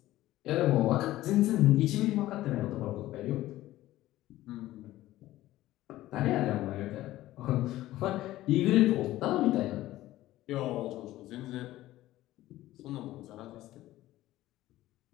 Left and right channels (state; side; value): quieter; right; 15.6 dB